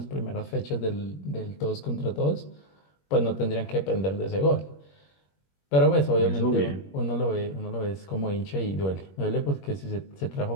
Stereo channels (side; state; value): right; late; 21 ms